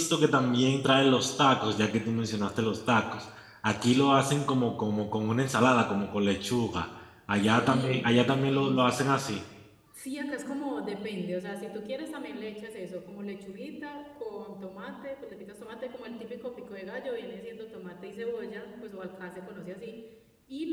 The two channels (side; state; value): both; identical; correlation 1.00